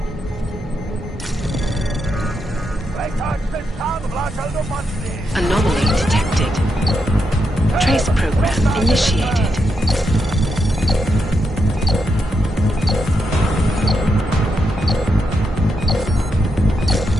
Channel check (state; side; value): normal; both; correlation 0.83